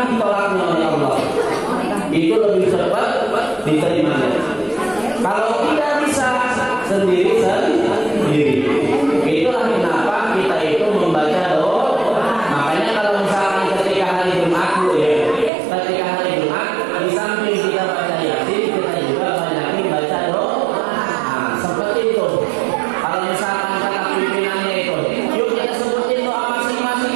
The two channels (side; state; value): left; drops out; at 15.5 s